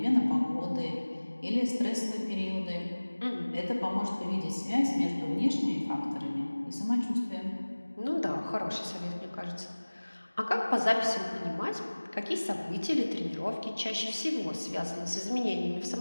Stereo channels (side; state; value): both; inverted; correlation -1.00